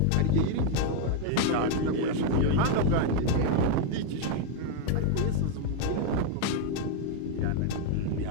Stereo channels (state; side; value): different; both; correlation 0.01